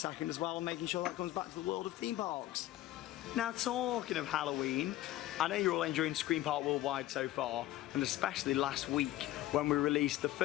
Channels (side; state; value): right; quieter; 15.2 dB